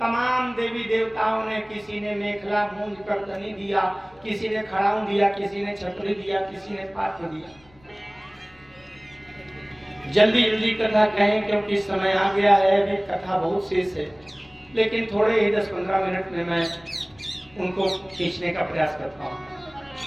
देवी देवताओं ने, किसी ने मेखला मूंज करदनी दिया, किसी ने खड़ाऊं दिया, किसी ने छतरी दिया, किसी ने पात्र दिया। जल्दी जल्दी कथा कहें क्योंकि समय आ गया है, अभी कथा बहुत शेष है, लेकिन थोड़े ही 10-15 मिनट में मैं उनको खींचने का प्रयास करता हूँ।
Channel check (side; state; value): left; noise; hum, 29 dB below the sound